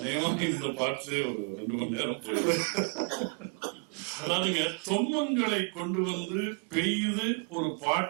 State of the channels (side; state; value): left; quieter; 37.5 dB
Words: இந்த பாட்டிலே ஒரு 2 மணி நேரம் போயிடும். அதாவதுங்க, தொன்மங்களை கொண்டு வந்து பெய்து ஒரு